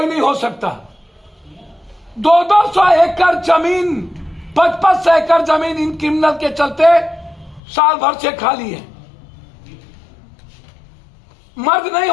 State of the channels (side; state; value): right; drops out; at 7.6 s